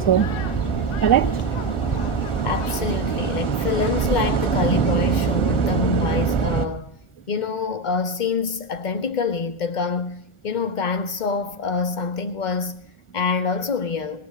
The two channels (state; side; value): late; right; 2.1 ms